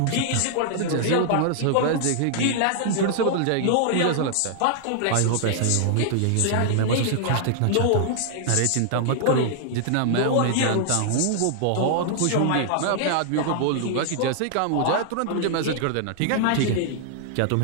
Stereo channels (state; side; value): different; both; correlation -0.01